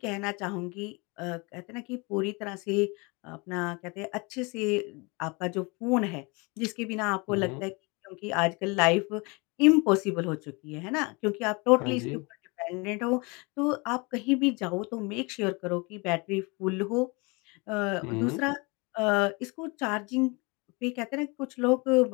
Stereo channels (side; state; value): right; quieter; 28.5 dB